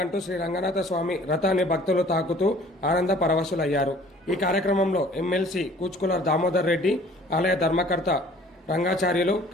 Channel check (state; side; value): normal; both; correlation 0.52